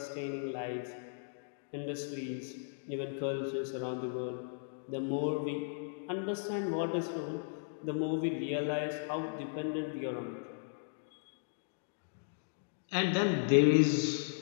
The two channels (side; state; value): right; silent; digital silence